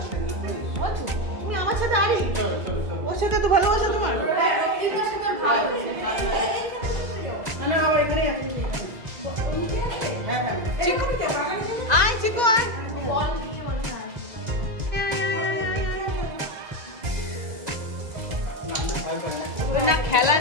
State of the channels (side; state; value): left; late; 2.0 ms